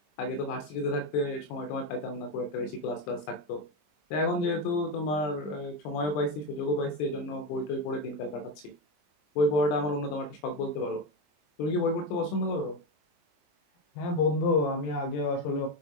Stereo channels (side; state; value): right; late; 20 ms